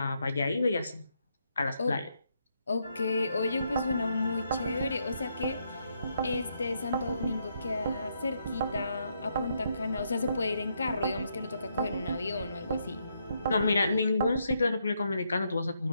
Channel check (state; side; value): inverted; both; correlation -0.77